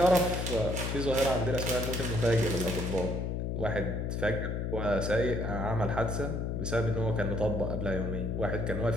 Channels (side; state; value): left; noise; hum, 1 dB below the sound